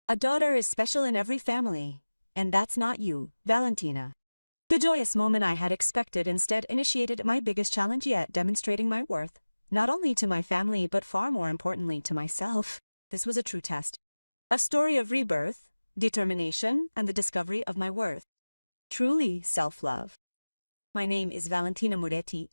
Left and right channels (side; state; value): both; inverted; correlation -1.00